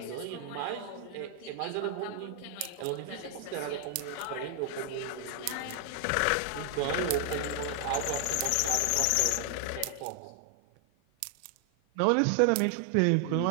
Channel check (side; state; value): both; different; correlation 0.00